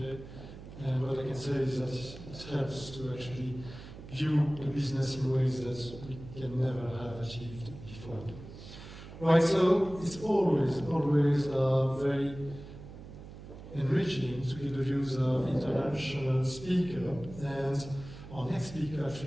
And what I can say is that it helps to actually view the business in ways that we can never have achieved before. Right, so it's always very enriching to get the views of international speakers, and our next speaker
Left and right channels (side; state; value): right; noise; hum, 14 dB below the sound